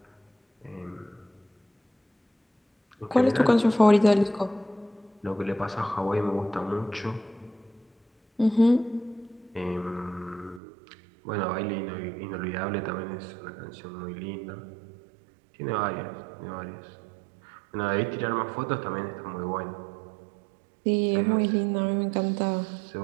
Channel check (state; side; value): drops out; left; at 10.6 s